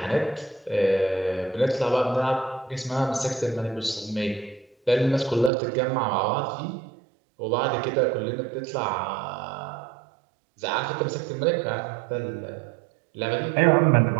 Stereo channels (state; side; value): drops out; left; at 5.5 s